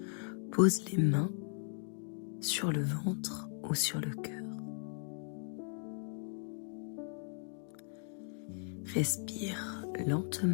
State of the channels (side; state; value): right; silent; 53 dB below the other